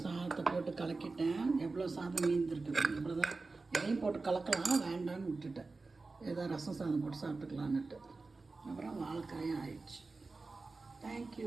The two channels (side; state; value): left; quieter; 3.8 dB